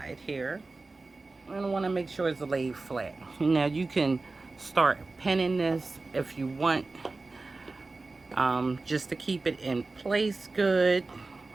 here. I want to make sure it's laid flat. Now you can start pinning this if you want, just to keep it in place good.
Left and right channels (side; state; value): left; quieter; 3.5 dB